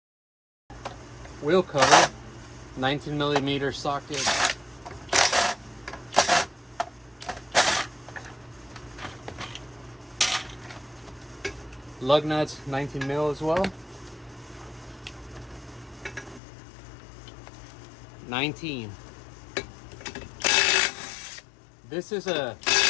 Wheel cover, 19mm socket. Lug nuts, 19mm as well. 19. This is a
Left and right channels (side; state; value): right; drops out; at 16.4 s